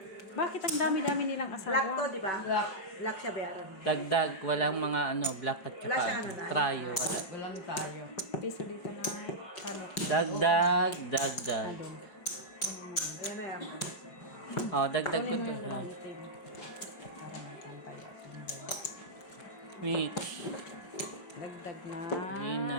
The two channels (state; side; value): late; right; 4.8 ms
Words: Bakit ang dami-dami nilang asawa? Black to, di ba? Black siya bayaran. Dagdag, walang mga ano, black at Wala siyang ano saka na. trial. Wala. Walang tayo. Piso dito na. Ano? Dagdag, dagdag. Wala Yan na yaman. Oh, dagdag ko to. Ha? Wait. Dagdag na. Yun